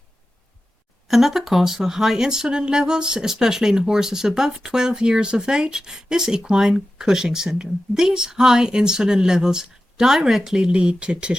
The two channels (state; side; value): normal; both; correlation 0.93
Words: Another cause for high insulin levels, especially in horses above 12 years of age, is equine Cushing syndrome. These high insulin levels directly lead to